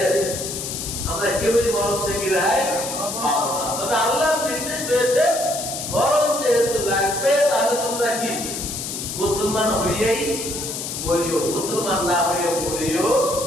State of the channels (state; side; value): noise; left; hiss, 6 dB below the sound